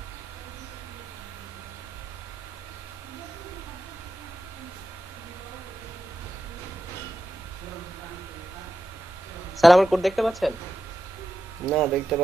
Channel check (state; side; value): normal; both; correlation 0.89